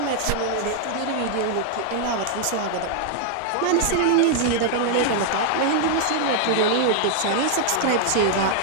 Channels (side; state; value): both; different; correlation 0.00